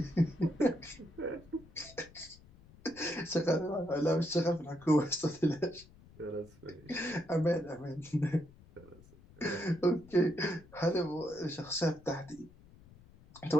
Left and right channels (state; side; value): noise; left; rumble, 23 dB below the sound